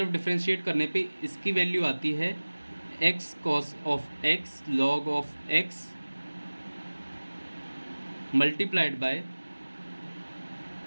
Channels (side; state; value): both; inverted; correlation -1.00